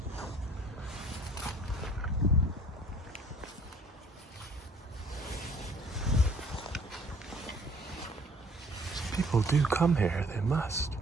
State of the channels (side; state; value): both; normal; correlation 0.56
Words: People do come here, they must.